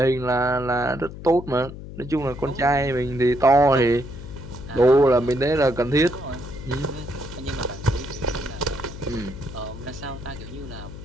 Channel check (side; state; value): left; noise; hum, 12 dB below the sound